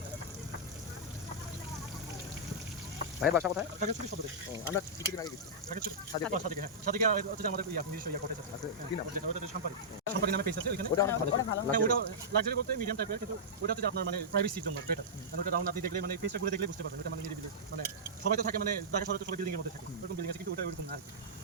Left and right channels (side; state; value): both; normal; correlation -0.13